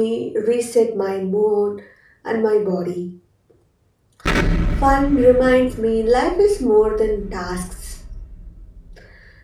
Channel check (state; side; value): identical; both; correlation 1.00